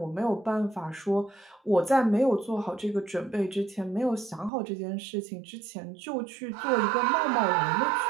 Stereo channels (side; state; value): left; drops out; at 4.5 s